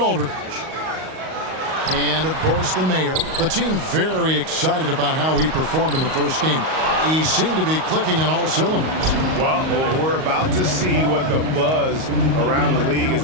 And, of course, the mayor. The team very excited about how he performed in the first game. He seemed to be clicking on all cylinders. Well, we're about to see what the buzz around the league is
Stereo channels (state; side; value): late; left; 38 ms